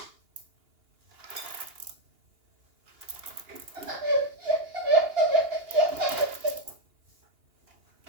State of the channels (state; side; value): late; left; 2.8 ms